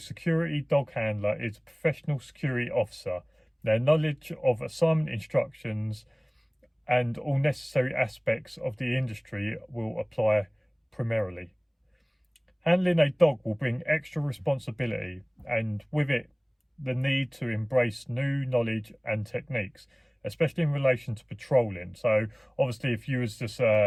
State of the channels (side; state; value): both; identical; correlation 1.00